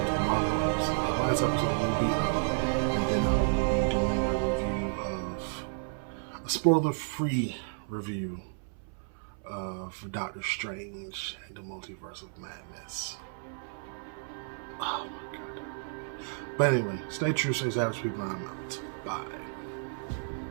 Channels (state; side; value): silent; left; 57 dB below the other